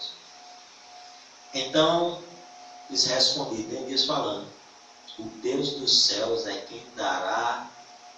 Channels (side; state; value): both; identical; correlation 1.00